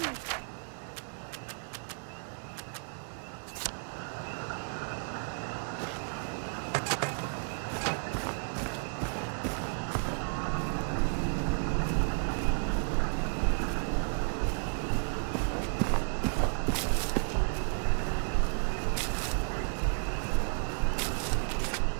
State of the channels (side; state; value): left; silent; 56 dB below the other